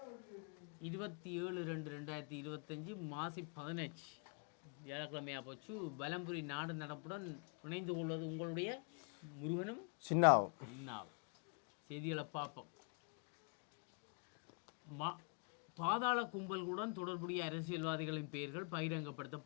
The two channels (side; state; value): right; quieter; 38.2 dB